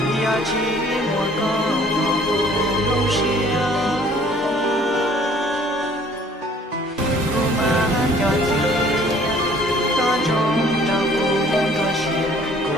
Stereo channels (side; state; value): both; normal; correlation 0.56